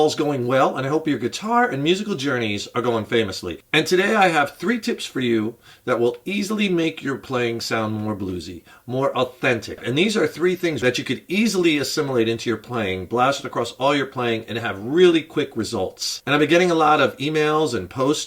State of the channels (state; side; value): identical; both; correlation 1.00